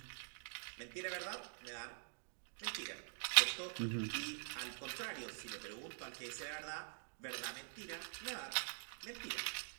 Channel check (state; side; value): silent; left; digital silence